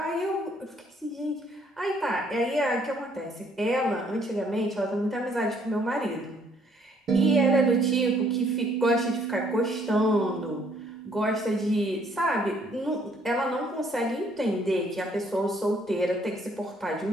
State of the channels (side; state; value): both; normal; correlation 0.65